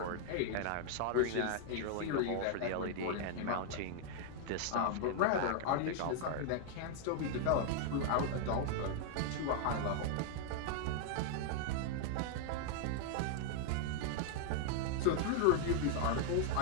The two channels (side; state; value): both; different; correlation 0.00